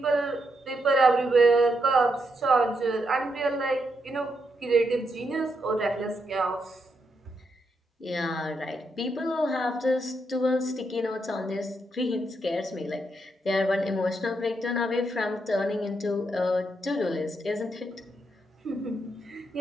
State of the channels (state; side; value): normal; both; correlation 0.80